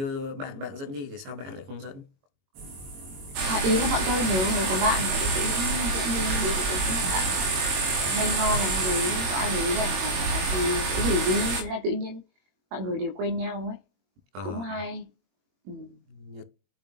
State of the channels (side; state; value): left; late; 22 ms